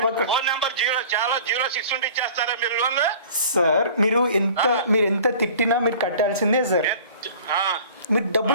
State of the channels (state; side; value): inverted; both; correlation -0.45